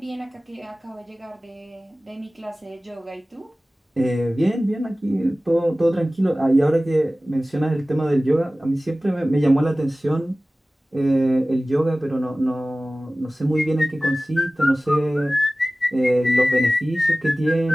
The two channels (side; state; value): both; normal; correlation 0.97